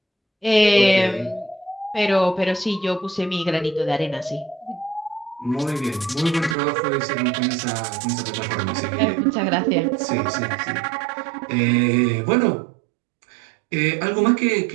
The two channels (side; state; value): left; drops out; at 6.6 s